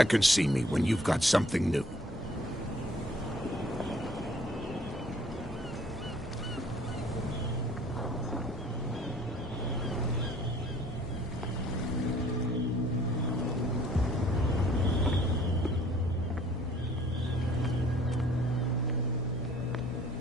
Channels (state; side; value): normal; both; correlation 0.56